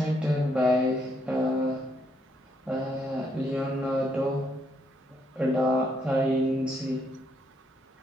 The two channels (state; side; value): normal; both; correlation 0.75